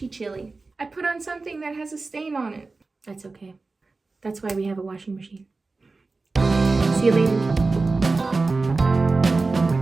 chilly. I put on something that has a stain on it. That's okay. That's why we have a washing machine. See you later.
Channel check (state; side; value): quieter; left; 3.8 dB